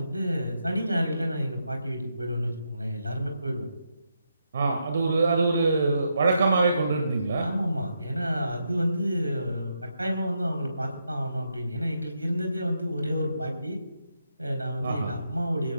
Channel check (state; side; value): inverted; both; correlation -0.82